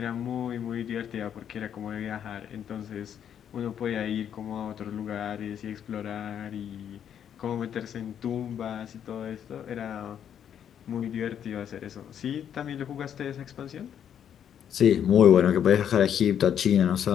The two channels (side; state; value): right; quieter; 9.1 dB